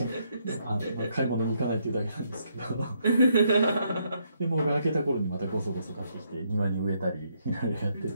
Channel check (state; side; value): inverted; both; correlation -0.74